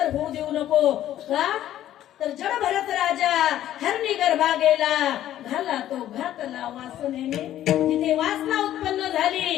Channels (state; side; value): quieter; right; 12.4 dB